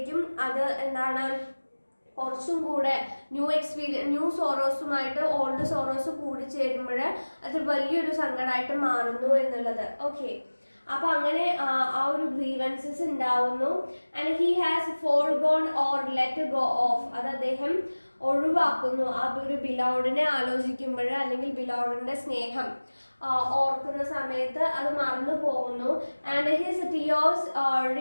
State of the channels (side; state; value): both; inverted; correlation -1.00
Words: അത് എന്താണ് കുറച്ചും കൂടെ ന്യൂ സോറോസുമായിട്ട് ഓൾഡ് സോറോസ് കൂടി ചേരുമ്പോൾ അത് വലിയൊരു സങ്കടമായിട്ട് മാറുന്നു എന്നുള്ളത്. ഓക്കെ, അപ്പൊ അങ്ങനെ ആ ഒരു ഗ്രീവൻസസ് ഉണ്ടാവുന്നു. And he has forgone or let go of, അത് അദ്ദേഹം ഒഴിവാക്കുന്നു. ആ ഒരു ബിലൗഡിനെ ആലോചിക്കുമ്പോൾ അല്ലെങ്കിൽ ബിലൗഡിന്റെ സ്നേഹം ഓർക്കുന്ന സമയത്ത് അത് മറന്നു പോകുന്നു. And his tears